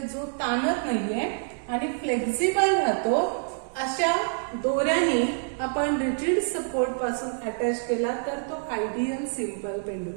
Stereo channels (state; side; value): silent; left; digital silence